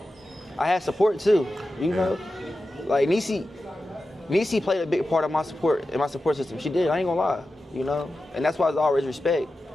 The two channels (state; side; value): normal; both; correlation 0.93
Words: I had support too, you know? Like Niecy played a big part of my support in my support system. She did, I ain't gonna lie, you know? And that's why it's always respect.